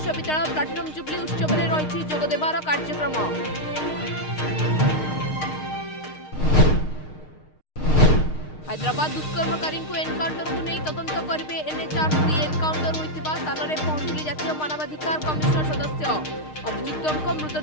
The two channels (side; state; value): right; late; 6.5 ms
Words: प्लाटिनम जुबली उत्सव में रही जोगदेवार कार्यक्रम। हैदराबाद दुष्कर्मकारी को एनकाउंटर को नहीं तदंत करेंगे एनएचआरसी। एनकाउंटर होता स्थान में पहुंचले जातीय मानवाधिकार कमिशन सदस्य। अभियुक्तों